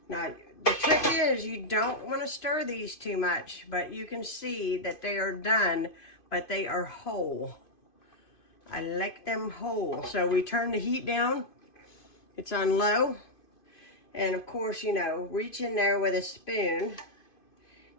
Now, the trick is you don't want to stir these too much, but you can see that they are done, but they are whole. I like them whole. So we turn the heat down. It's on low. And of course, you know, reach in there with a spoon.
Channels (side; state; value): right; late; 2.5 ms